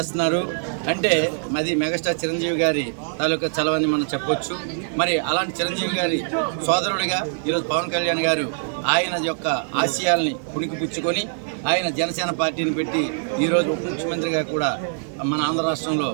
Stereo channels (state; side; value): silent; left; 55 dB below the other